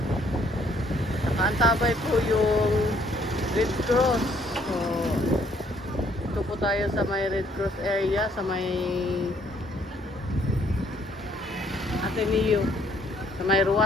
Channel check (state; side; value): normal; both; correlation 0.65